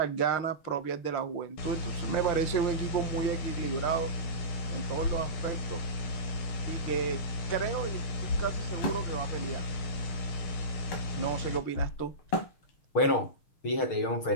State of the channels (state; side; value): late; right; 6.5 ms